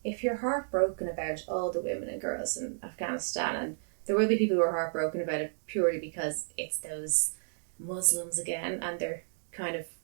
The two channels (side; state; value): left; silent; digital silence